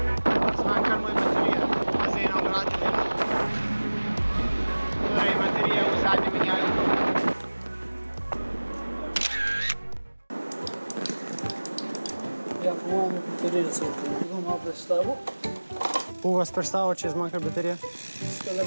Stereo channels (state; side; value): inverted; both; correlation -1.00